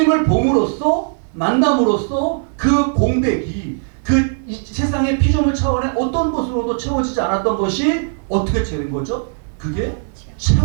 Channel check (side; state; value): left; silent; 63 dB below the other